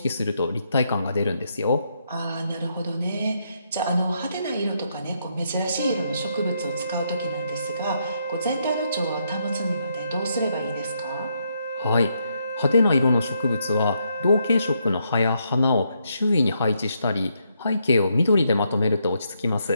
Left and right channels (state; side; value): inverted; both; correlation -0.77